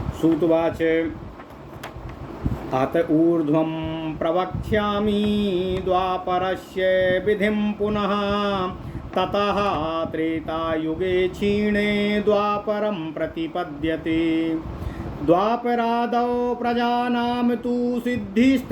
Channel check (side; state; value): both; identical; correlation 1.00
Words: सूतुवाच अत ऊर्ध्वं प्रवक्ष्यामि द्वापरस्य विधिं पुनः। ततः त्रेतायुगे क्षीणे द्वापरं प्रतिपद्यते। द्वापरादौ प्रजानां तु